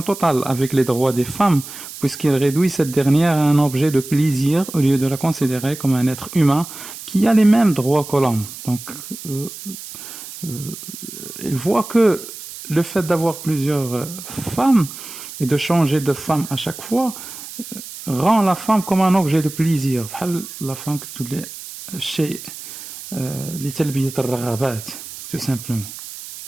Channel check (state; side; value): noise; right; hiss, 13 dB below the sound